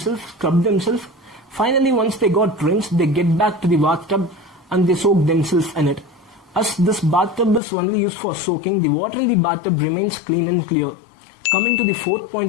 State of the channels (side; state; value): right; drops out; at 7.6 s